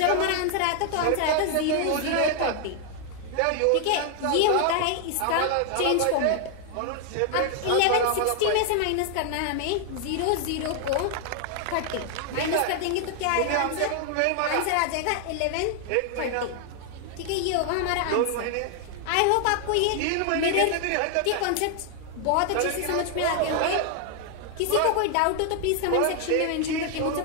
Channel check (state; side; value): different; both; correlation 0.00